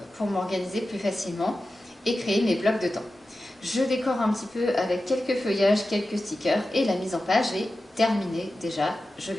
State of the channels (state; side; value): normal; both; correlation 0.93